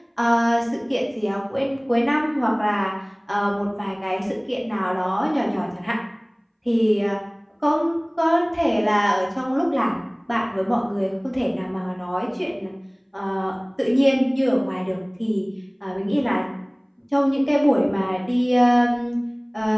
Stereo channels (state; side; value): identical; both; correlation 1.00